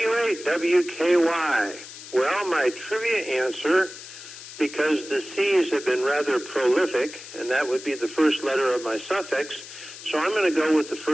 Well, my trivia answer, because the C's have been rather prolific, and that would be the first letter of my suffix, so I'm going to go with the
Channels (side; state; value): left; noise; hiss, 14 dB below the sound